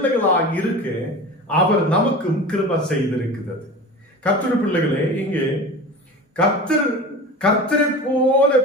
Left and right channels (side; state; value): both; normal; correlation 0.33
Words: இருக்க அவர் நமக்கும் கிருபை செய்திருக்கிறது. கர்த்தருடைய பிள்ளைகளே, இங்கே கர்த்தரை போல